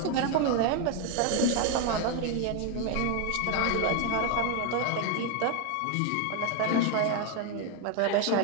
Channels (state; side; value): different; both; correlation 0.01